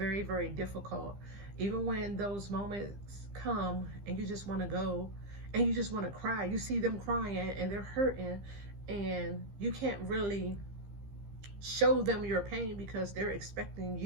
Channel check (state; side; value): late; left; 15 ms